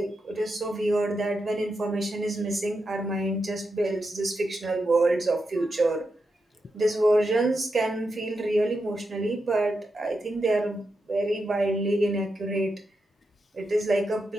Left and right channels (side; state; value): both; normal; correlation 0.86